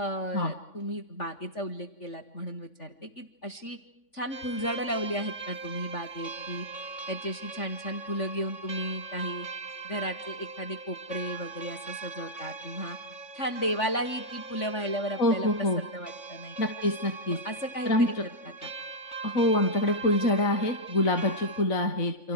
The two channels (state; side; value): late; right; 3.5 ms